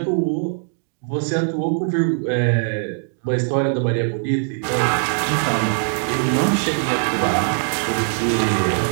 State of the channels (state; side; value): silent; left; digital silence